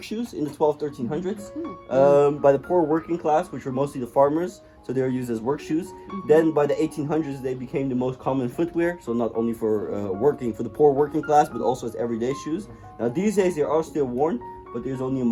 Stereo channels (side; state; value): both; identical; correlation 1.00